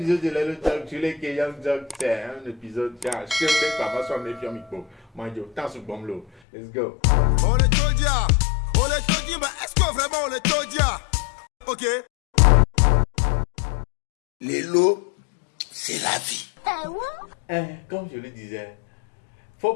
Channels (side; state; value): right; drops out; at 6.3 s